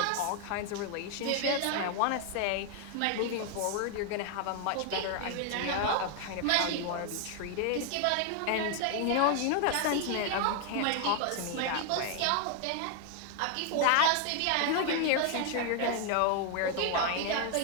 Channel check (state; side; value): different; both; correlation 0.00